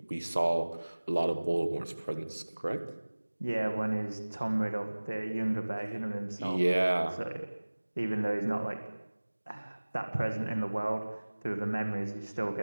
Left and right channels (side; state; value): both; inverted; correlation -1.00